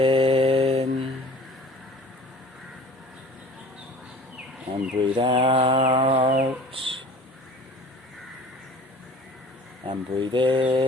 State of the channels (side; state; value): both; normal; correlation 0.45